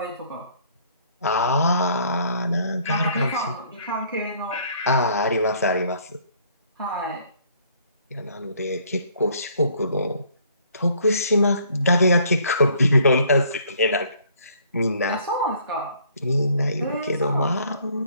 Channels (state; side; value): inverted; both; correlation -0.62